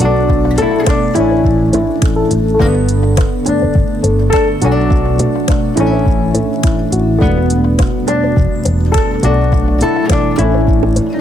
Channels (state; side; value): normal; both; correlation 0.82